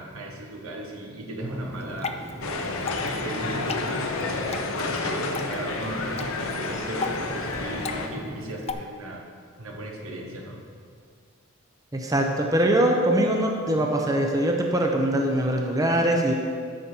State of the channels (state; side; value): normal; both; correlation 0.40